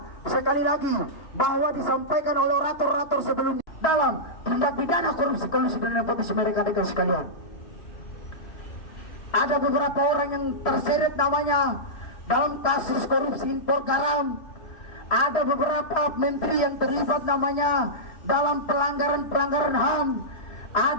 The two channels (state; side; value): late; right; 3.1 ms